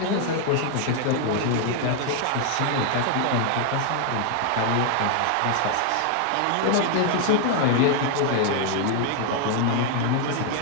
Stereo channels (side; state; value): both; different; correlation 0.00